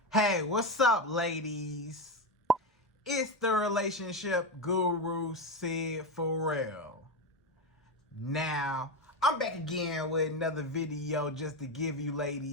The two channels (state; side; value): normal; both; correlation 0.14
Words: Hey, what's up, ladies? It's the relationship guru, Sydd Ferrell. Now, I'm back again with another video just to give you